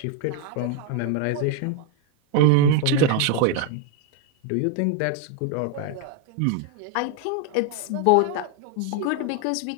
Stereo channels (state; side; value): different; both; correlation 0.01